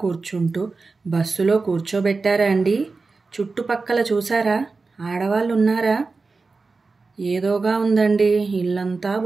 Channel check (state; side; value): quieter; left; 4.0 dB